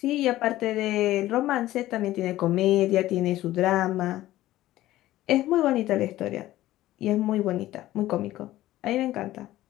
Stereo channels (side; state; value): right; quieter; 15.3 dB